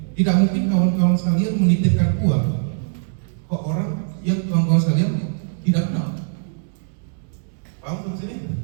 Tidak mungkin kawan-kawan sekalian menitipkan uang ke orang yang kawan-kawan sekalian tidak kenal. Paham sampai sini?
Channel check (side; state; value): left; silent; digital silence